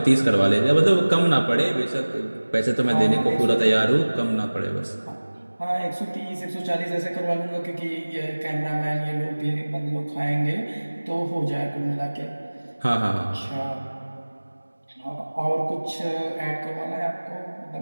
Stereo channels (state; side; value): inverted; both; correlation -1.00